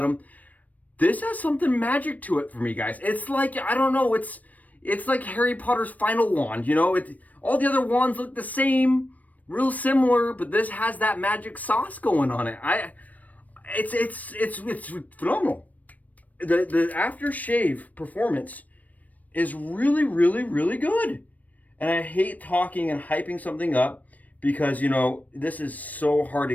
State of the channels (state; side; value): late; right; 0.074 ms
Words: This has something magic to it for me, guys. It's like, I don't know, it's like Harry Potter's final wand, you know? All the other wands look the same, real similar, but this has that magic sauce going on it. It's phenomenal. The aftershave performance is really, really, really good. And I hate talking and hyping something up because, you know, this is so hard to